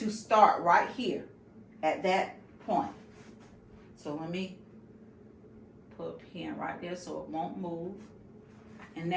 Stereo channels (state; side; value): identical; both; correlation 1.00